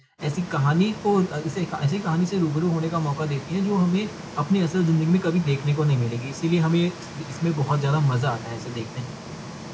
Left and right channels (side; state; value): both; identical; correlation 1.00